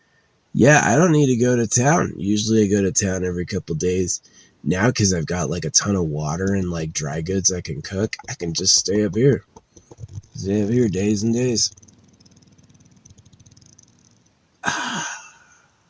yeah, I don't need to go to town. Usually I go to town every couple days. Now, because I've got like a ton of water and like dry goods I can cook, I can just stay up here. Stay up here days and days.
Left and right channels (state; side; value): identical; both; correlation 1.00